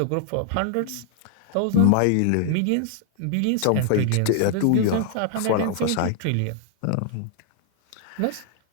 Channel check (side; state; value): both; different; correlation 0.00